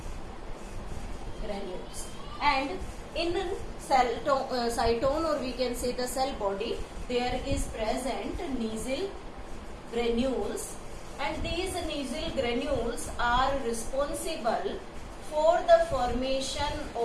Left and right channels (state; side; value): identical; both; correlation 1.00